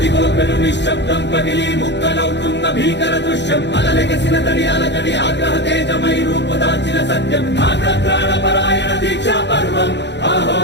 అదిగో పెను నిశ్శబ్దం పగిలి ముక్కలవుతున్న భీకర దృశ్యం అలలెగసిన తడి అలజడి ఆగ్రహ తేజమై రూపుదాల్చిన సత్యం ఆగ్రహ పరాయణ దీక్షా పర్వం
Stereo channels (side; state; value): right; late; 0.51 ms